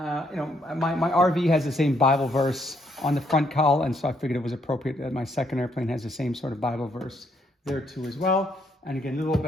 RV has the same Bible verse on the front cowl, and so I figured it was appropriate that my second airplane has the same sort of Bible verse there too as well. And again, little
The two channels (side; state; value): both; normal; correlation 0.72